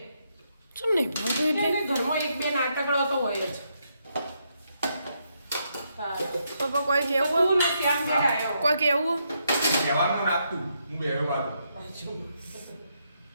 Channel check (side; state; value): both; inverted; correlation -0.78